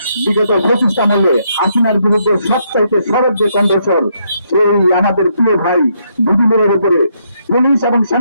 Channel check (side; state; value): both; inverted; correlation -0.74